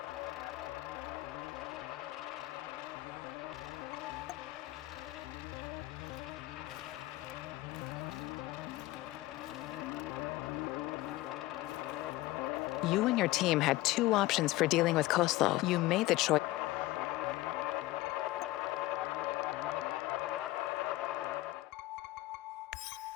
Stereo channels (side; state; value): right; quieter; 17.9 dB